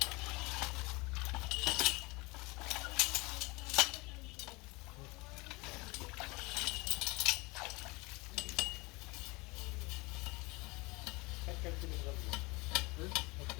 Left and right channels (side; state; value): right; quieter; 25.1 dB